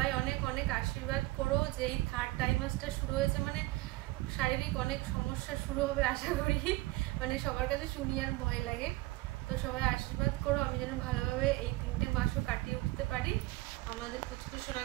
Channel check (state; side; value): quieter; left; 19.7 dB